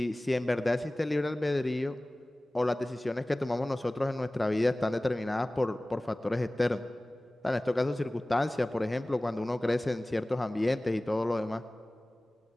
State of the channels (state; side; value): normal; both; correlation 0.98